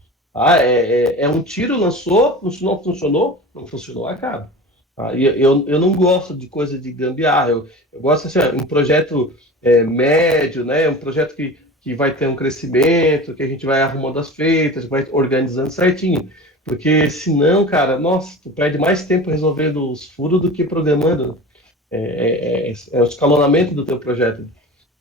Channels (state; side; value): normal; both; correlation 0.34